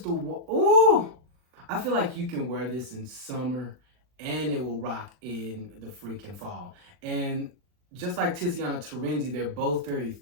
the one. Oh, I feel like you can wear this in summer and it will rock in the freaking fall. And just like Tiziana Terenzi, they're both very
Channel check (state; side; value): late; left; 40 ms